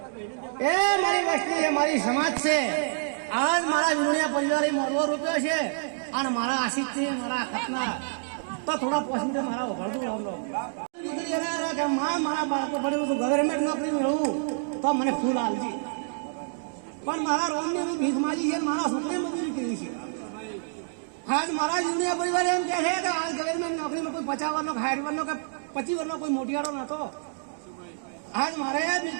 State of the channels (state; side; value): silent; left; digital silence